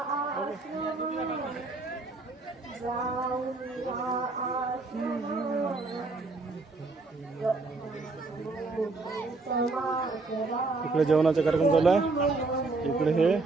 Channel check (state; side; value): quieter; left; 3.6 dB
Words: इकडे जेवणाचा कार्यक्रम चालू आहे. इकडे हे